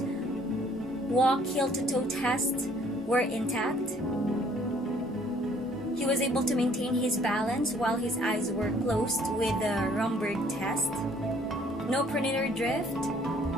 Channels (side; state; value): both; normal; correlation 0.60